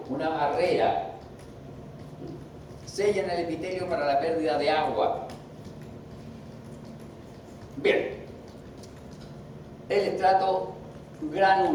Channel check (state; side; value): identical; both; correlation 1.00